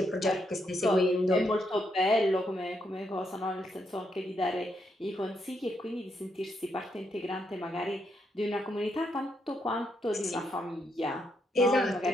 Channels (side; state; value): both; normal; correlation 0.79